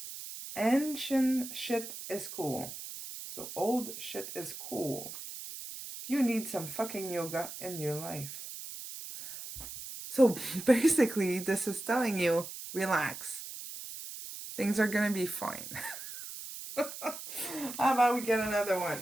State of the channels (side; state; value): right; noise; hiss, 10 dB below the sound